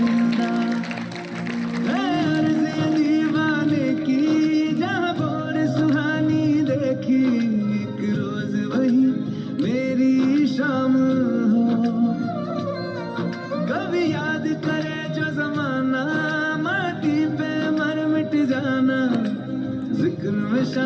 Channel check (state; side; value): identical; both; correlation 1.00